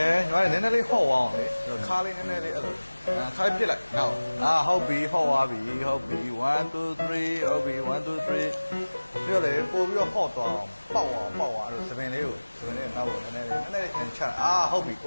ယ်ညီမလေးနည်းနည်းလေးဟော့အောင်လေခါလေးနည်းနည်းလေးအဲ့လိုခါပြစ်လိုက်နောက်ဟုတ်ပြီဟော့သွားပြီဟုတ်ပြီ1 2 3ဟုတ်ပြီ1 2 3ပြီးတော့လေပို့ပြီးတော့ဟော့သွားအောင်ပေါက်အောင်အဲ့လိုစပင်လေးနောက်ကိုနည်းနည်းလေးချဟုတ်ပြီ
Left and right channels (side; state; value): both; inverted; correlation -1.00